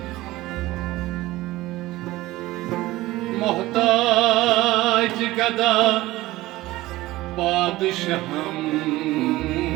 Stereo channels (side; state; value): left; quieter; 17.9 dB